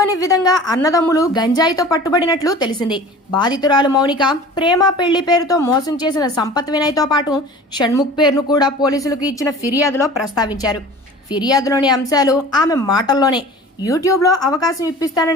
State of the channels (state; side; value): normal; both; correlation 0.41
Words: విధంగా అన్నదమ్ములు గంజాయితో పట్టుబడినట్లు తెలిసింది. బాధితురాలు మౌనిక ప్రేమ, పెళ్లి పేరుతో మోసం చేసిన సంపత్ వినయ్ తో పాటు షణ్ముఖ్ పేరును కూడా పోలీసులకు ఇచ్చిన ఫిర్యాదులో ప్రస్తావించారు. ఫిర్యాదులోని అంశాలు ఆమె మాటల్లోనే యూట్యూబ్లో అవకాశం